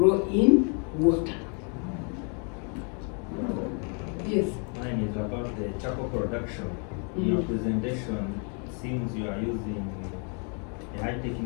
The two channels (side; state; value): right; quieter; 39.2 dB